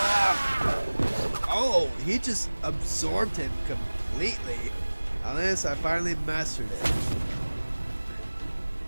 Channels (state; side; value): inverted; both; correlation -1.00